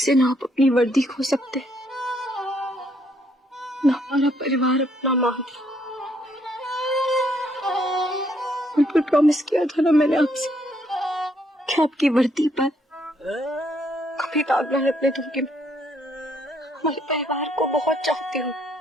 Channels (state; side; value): normal; both; correlation 0.70